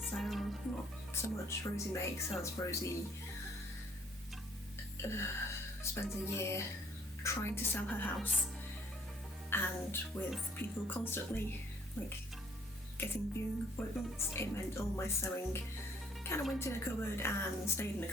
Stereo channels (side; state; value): both; normal; correlation 0.62